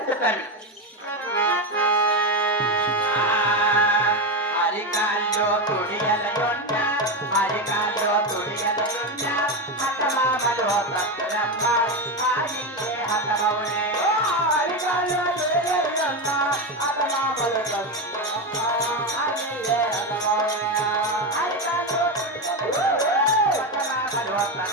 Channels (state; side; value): normal; both; correlation 0.13